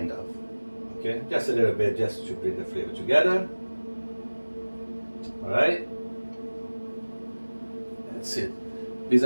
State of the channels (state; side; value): inverted; both; correlation -1.00